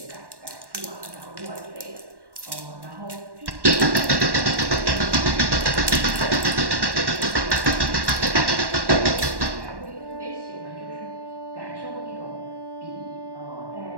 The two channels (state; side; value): late; left; 1.1 ms